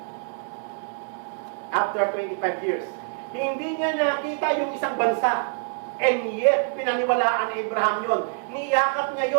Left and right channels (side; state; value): left; silent; 61 dB below the other